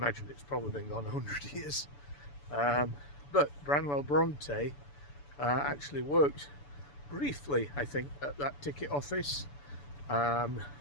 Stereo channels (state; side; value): late; right; 7.0 ms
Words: it's probably been gone 100 years. But Branwell Bronte actually worked briefly, I think, at that ticket office.